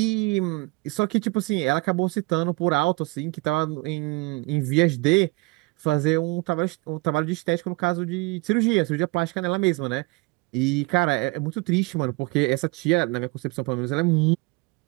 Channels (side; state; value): left; quieter; 25.8 dB